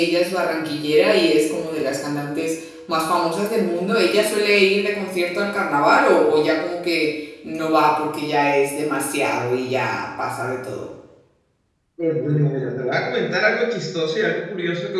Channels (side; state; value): both; identical; correlation 1.00